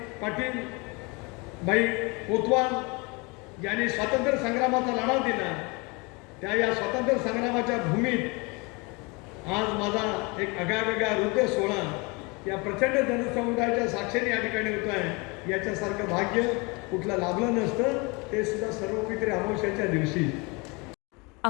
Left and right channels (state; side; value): quieter; right; 28.3 dB